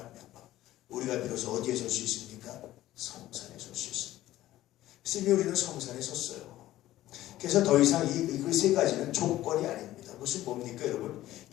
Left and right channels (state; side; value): quieter; right; 14.9 dB